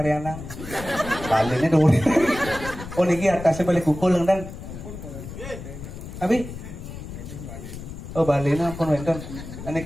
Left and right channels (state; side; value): noise; left; rumble, 11 dB below the sound